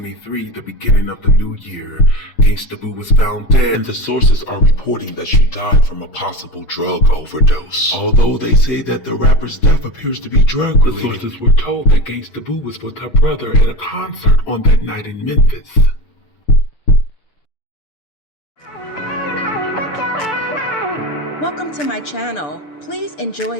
the beginning of the new year, Gangsta Boo was found dead, and the sources are reporting that she died from a possible drug overdose. Although they say that the rapper's death appears to be drug-related, the sources were told that Gangsta Boo was with her brother at a concert on that night in Memphis. Welcome to my channel. Please enjoy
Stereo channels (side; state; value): right; late; 6.8 ms